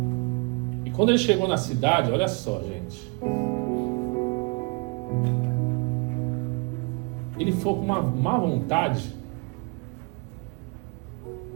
Quando ele chegou na cidade, olha só, gente. Ele foi com uma má vontade.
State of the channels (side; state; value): left; quieter; 32.6 dB